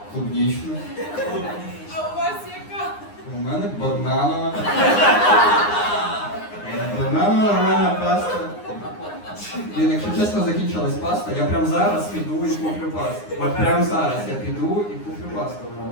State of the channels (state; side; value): late; right; 9.7 ms